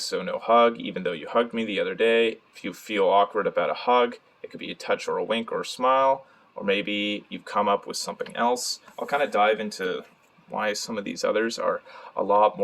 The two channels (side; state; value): both; identical; correlation 1.00